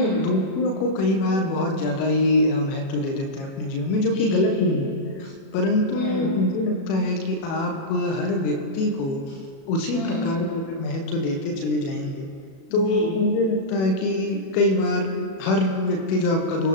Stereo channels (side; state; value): right; late; 37 ms